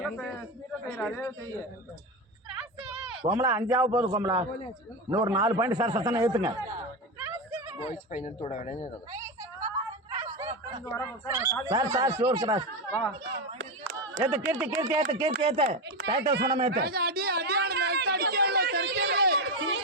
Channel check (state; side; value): normal; both; correlation 0.15